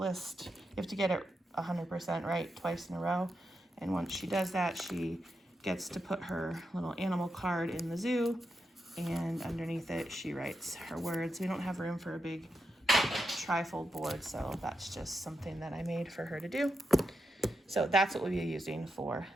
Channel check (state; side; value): normal; both; correlation 0.86